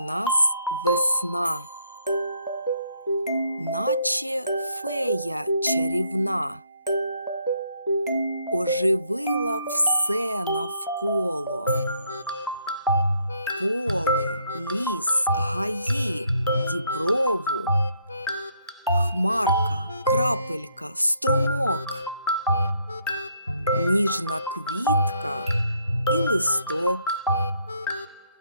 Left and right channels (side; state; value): both; inverted; correlation -0.70